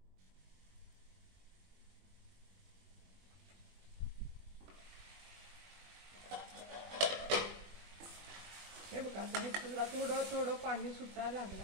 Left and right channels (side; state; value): left; late; 21 ms